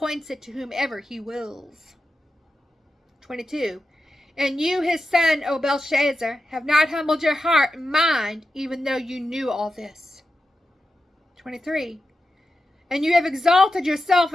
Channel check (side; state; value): both; normal; correlation 0.90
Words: it to whomever he wills. 22. And you, his son, O Belshazzar, have not humbled your heart and mind, even though you knew all this. 23. And you have exalted yourself